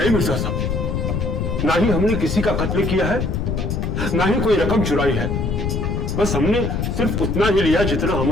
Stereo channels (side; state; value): left; noise; rumble, 1 dB below the sound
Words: मिर्जा साहब, ना ही हमने किसी का कत्ल किया है, ना ही कोई रकम चुराई है। बस हमने सिर्फ उतना ही लिया जितना